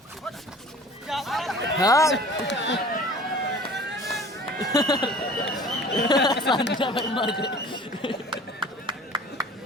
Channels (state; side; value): normal; both; correlation 0.45